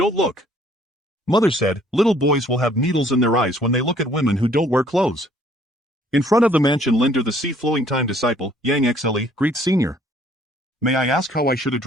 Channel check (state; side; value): normal; both; correlation 0.60